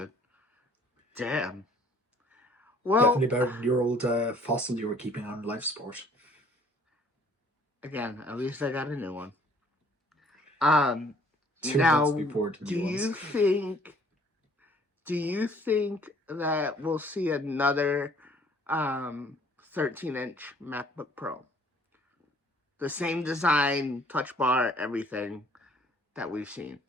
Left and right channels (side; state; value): both; normal; correlation 0.57